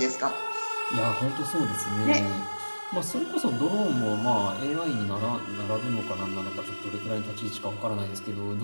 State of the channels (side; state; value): both; inverted; correlation -1.00